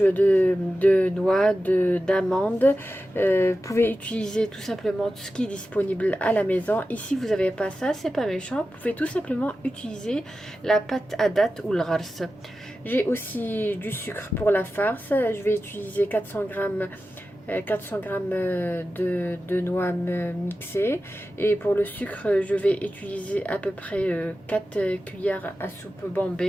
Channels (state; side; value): normal; both; correlation 0.93